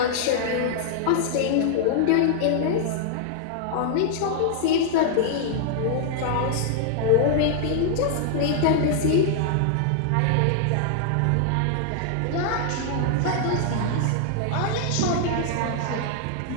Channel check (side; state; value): both; different; correlation -0.01